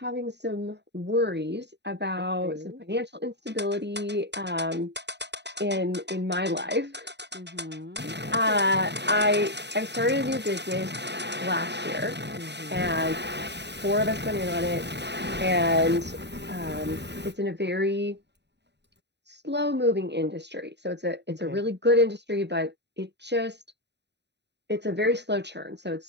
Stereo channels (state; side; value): late; left; 0.50 ms